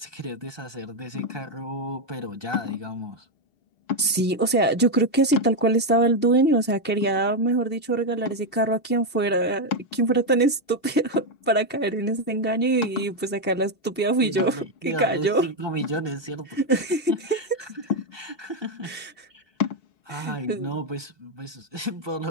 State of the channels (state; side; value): late; right; 2.7 ms